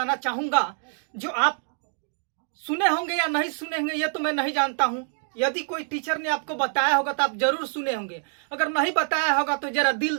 चाहूंगा जो आप सुने होंगे या नहीं सुने होंगे ये तो मैं नहीं जानता हूं। यदि कोई टीचर ने आपको बताया होगा तो आप जरूर सुने होंगे। अगर नहीं बताया होगा तो जरा दिल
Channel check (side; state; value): left; silent; 58 dB below the other